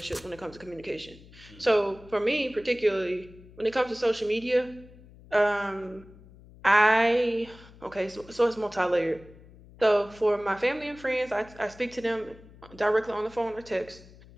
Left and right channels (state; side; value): noise; left; hum, 22 dB below the sound